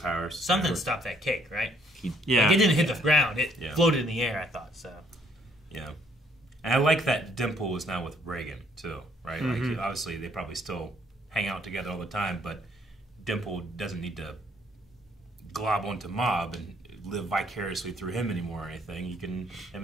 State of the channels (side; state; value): both; normal; correlation 0.65